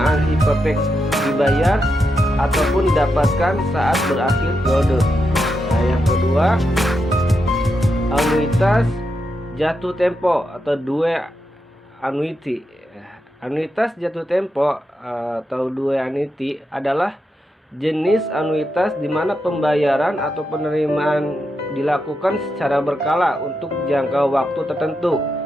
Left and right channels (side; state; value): both; normal; correlation 0.85